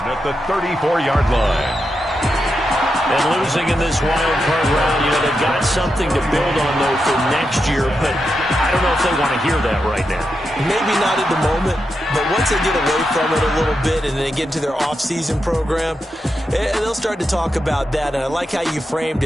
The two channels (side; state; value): both; normal; correlation 0.86